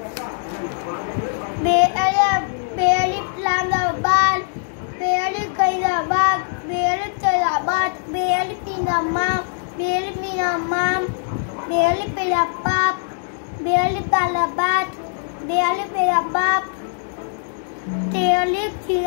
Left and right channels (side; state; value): right; silent; digital silence